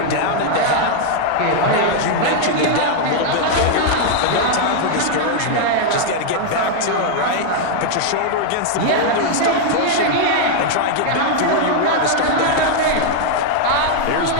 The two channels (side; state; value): both; different; correlation 0.00